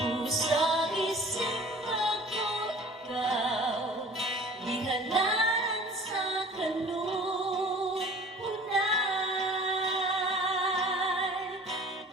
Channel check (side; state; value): both; normal; correlation 0.46